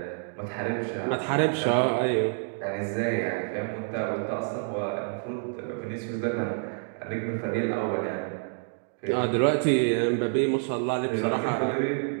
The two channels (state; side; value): silent; left; 59 dB below the other